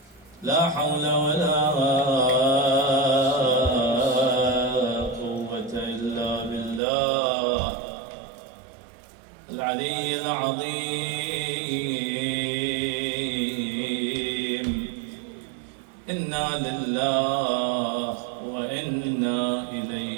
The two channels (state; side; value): drops out; left; at 6.8 s